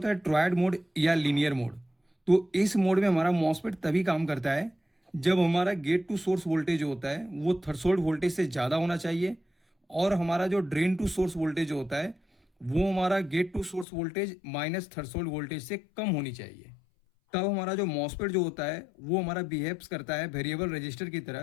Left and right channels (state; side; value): drops out; right; at 13.9 s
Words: है ट्रायड मोड या लीनियर मोड। तो इस मोड में हमारा मॉसफेट तभी काम करता है जब हमारा गेट टू सोर्स वोल्टेज होता है वो थ्रेशोल्ड वोल्टेज से ज़्यादा होना चाहिए, और हमारा जो ड्रेन टू सोर्स वोल्टेज होता है वो हमारा gate to source voltage minus threshold voltage से कम होनी चाहिए। तब हमारा जो मॉसफेट जो होता है वो हमारा बिहेव्स करता है वेरिएबल रजिस्टर की